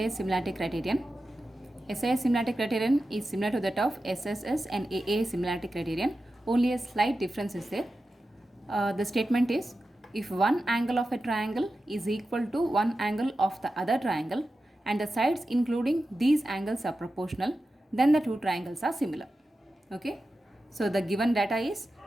similarity criterion. SAS similarity criterion is similar to that of SSS and AA similarity criterion, only a slight difference is there. The statement is, if one angle of a triangle is equal to one angle of the other triangle and the sides including these angles are proportional, then the two triangles are similar. Okay, so the given data is,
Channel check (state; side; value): normal; both; correlation 0.92